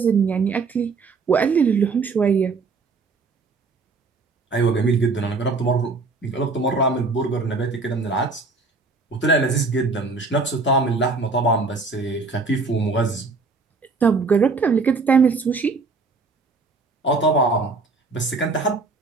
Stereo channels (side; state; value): left; quieter; 4.0 dB